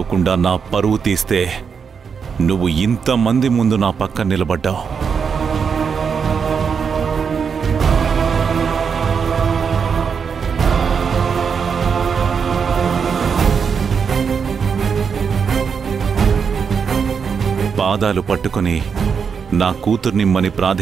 నా పరువు తీస్తే నువ్వు ఇంతమంది ముందు నా పక్కన నిలబడ్డావు. పాదాలు పట్టుకుని నా కూతుర్నిమ్మని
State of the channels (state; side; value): quieter; left; 6.3 dB